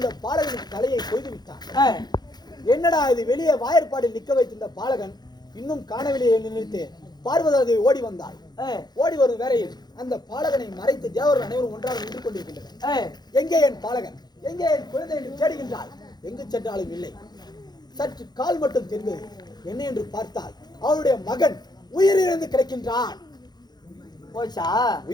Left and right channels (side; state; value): right; late; 0.20 ms